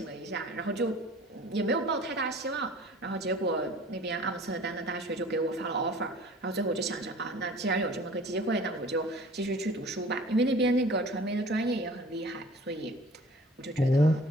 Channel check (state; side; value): normal; both; correlation 0.46